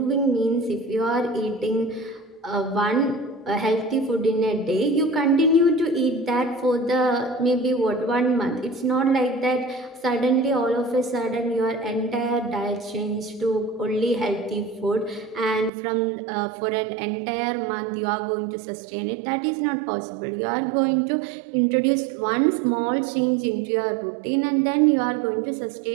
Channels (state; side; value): drops out; left; at 15.7 s